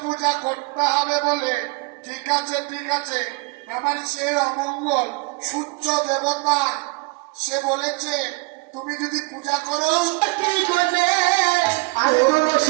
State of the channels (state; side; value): quieter; left; 27.4 dB